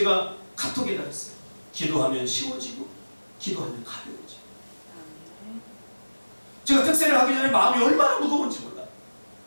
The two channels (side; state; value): both; inverted; correlation -1.00